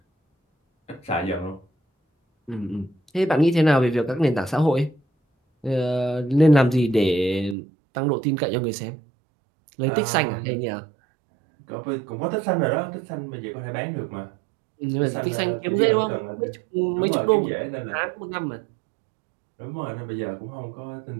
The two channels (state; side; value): drops out; left; at 7.6 s